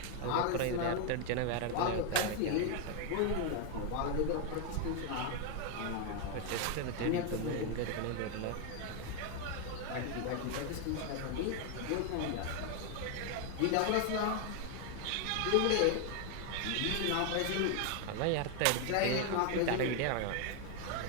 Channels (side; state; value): both; different; correlation 0.01